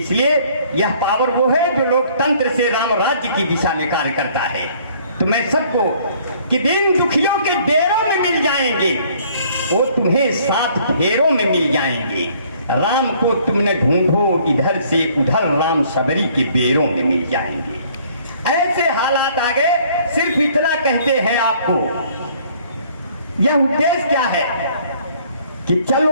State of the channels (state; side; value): inverted; both; correlation -0.59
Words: यह पावर वो है जो लोकतंत्र से राम राज्य की दिशा में कार्य करता है। तो मैं सबको कि दिन दुखियों के डेरों में मिल जाएंगे, वो तुम्हें 7 फेरों में मिल जाएंगे। राम को तुमने ढूंढो इधर से उधर, राम सबरी के बेरों में मिल जाएंगे। ऐसे हालात आ गए। सिर्फ इतना कहते हैं आपको, यह उद्देश्य क्या है कि